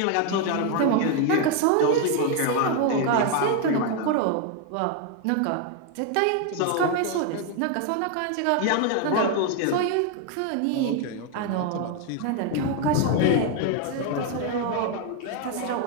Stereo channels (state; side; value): different; both; correlation 0.01